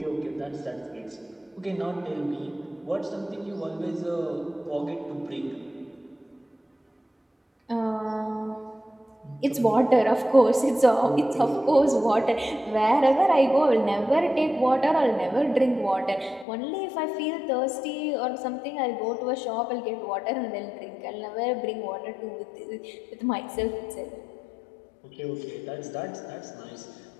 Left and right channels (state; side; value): drops out; right; at 16.4 s